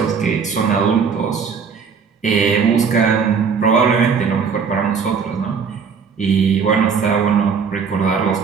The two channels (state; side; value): quieter; left; 6.0 dB